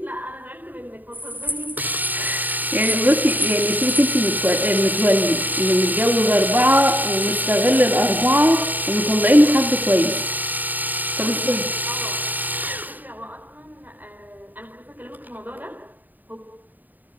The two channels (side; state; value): left; late; 0.086 ms